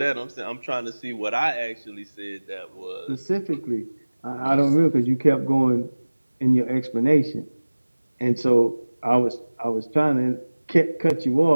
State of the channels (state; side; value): inverted; both; correlation -1.00